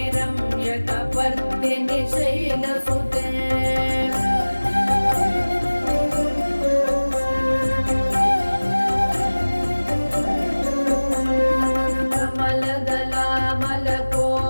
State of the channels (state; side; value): inverted; both; correlation -1.00